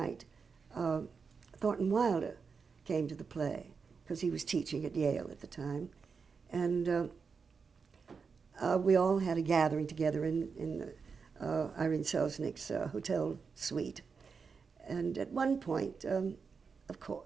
Thornton Wilder came to the play because he was teaching at Yale at the time. And we all had a gathering together in Irene Selznick's hotel suite. And at one point, of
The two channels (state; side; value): quieter; left; 5.4 dB